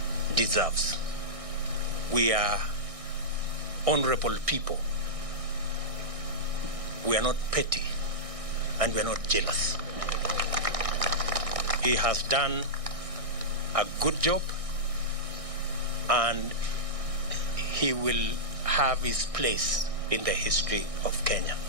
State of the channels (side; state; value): left; late; 1.6 ms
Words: deserves. We are honorable people. We are not petty, and we are not jealous. He has done a good job, and he will have his place in the history of Kenya.